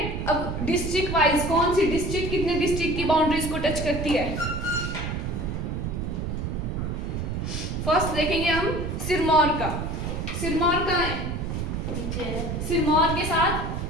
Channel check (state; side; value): noise; right; rumble, 3 dB below the sound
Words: अब डिस्ट्रिक्ट वाइज, कौन सी डिस्ट्रिक्ट कितने डिस्ट्रिक्ट की बाउंड्रीज को टच करती है। फर्स्ट देखेंगे हम सिरमौर का। सिरमौर कहाँ है? नीचे है। सिरमौर के